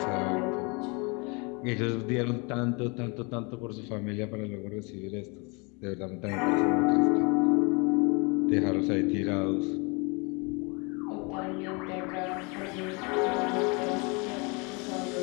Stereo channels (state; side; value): quieter; right; 30.2 dB